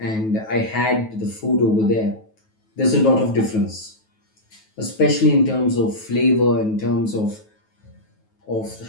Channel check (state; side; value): late; right; 9.3 ms